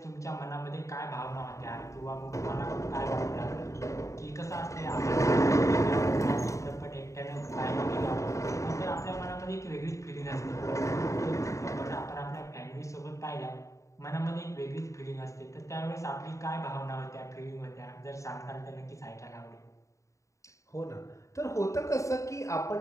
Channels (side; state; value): right; late; 0.15 ms